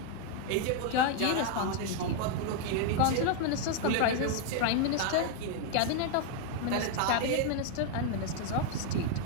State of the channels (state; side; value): different; both; correlation 0.00